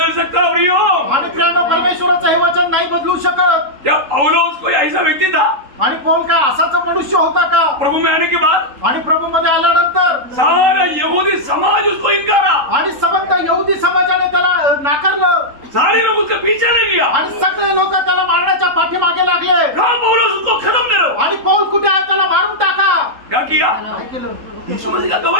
सकता प्रियो. आणि प्रियांनो परमेश्वराचं हे वचन नाही बदलू शकत. क्या पौलुस कोई ऐसा व्यक्ती था? आणि पौल काय असाच मनुष्य होता का? प्रभु में आने के बाद आणि प्रभू मध्ये आल्यानंतर सारा यहूदी समाज उसको इनकारा, आणि संबंध यहुदी समाजाने त्याला नाकारलं, सारे लोग उसके पीछे लग गया, आणि सगळे लोक त्याला मारण्याच्या पाठीमागे लागले. कहा पौलुस उसको खत्म करो. आणि पौल कुठे आहे त्याला मारून टाका. क्या किया? काय केलं? यीशु मसीह का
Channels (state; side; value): late; left; 3.8 ms